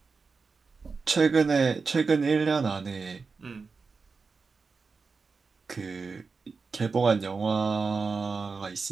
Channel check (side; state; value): left; quieter; 4.7 dB